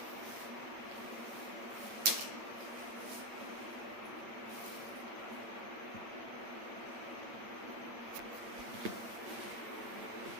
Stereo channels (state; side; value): late; left; 8.4 ms